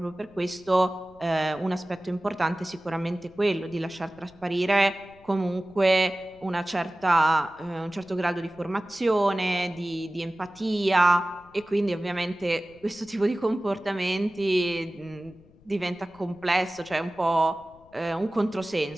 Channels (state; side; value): noise; left; rumble, 27 dB below the sound